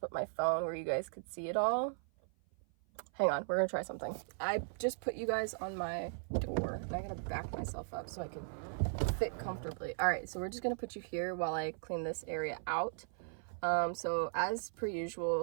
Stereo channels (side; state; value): left; silent; 53 dB below the other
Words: my phone where you guys could see it all, hang on, we're gonna try something. I just put you guys on my door, and I gotta back myself up so I can fit comfortably. All right, so we're just gonna put you here while I clean this area out. So as per